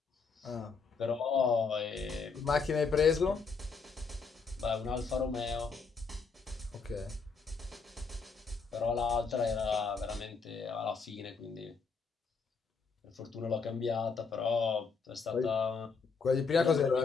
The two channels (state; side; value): quieter; right; 5.0 dB